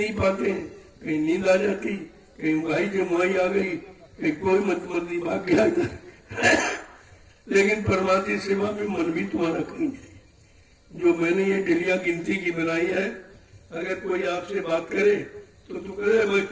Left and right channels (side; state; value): both; identical; correlation 1.00